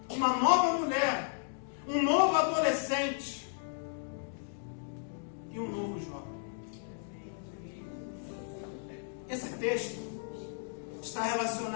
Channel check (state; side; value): silent; right; digital silence